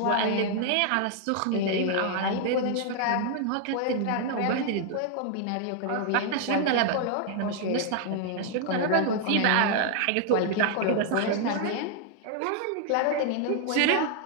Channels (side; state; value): both; different; correlation 0.00